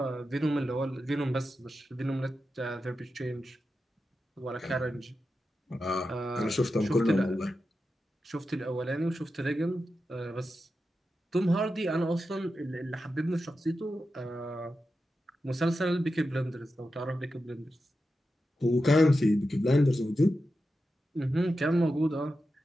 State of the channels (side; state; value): both; normal; correlation 0.90